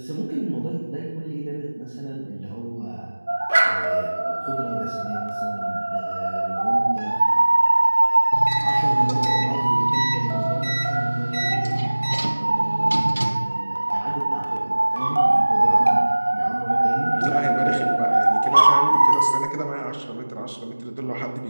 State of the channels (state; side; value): inverted; both; correlation -1.00